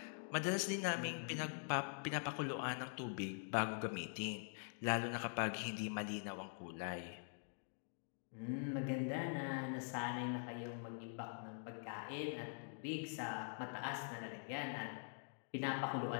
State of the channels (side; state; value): right; silent; digital silence